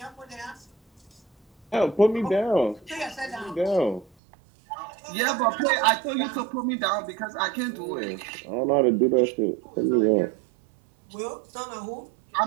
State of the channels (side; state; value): left; drops out; at 4.1 s